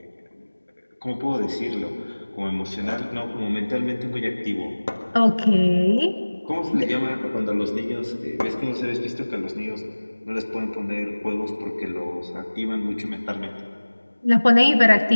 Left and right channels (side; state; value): both; inverted; correlation -1.00